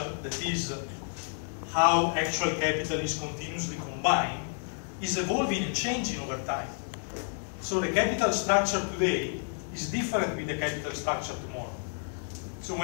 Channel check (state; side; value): silent; right; 58 dB below the other